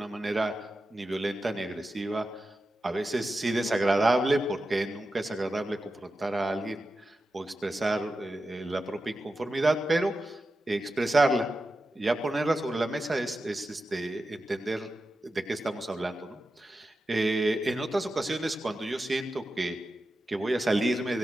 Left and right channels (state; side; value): normal; both; correlation 0.91